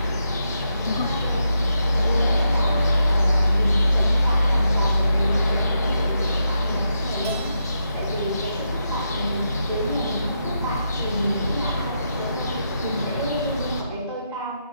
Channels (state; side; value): inverted; both; correlation -0.83